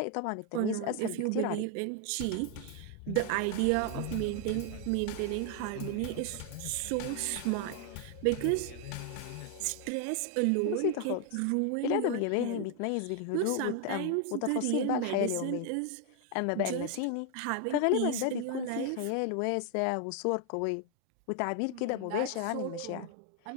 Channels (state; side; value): different; both; correlation 0.00